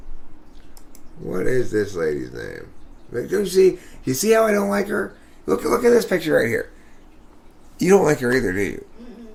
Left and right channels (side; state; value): both; identical; correlation 1.00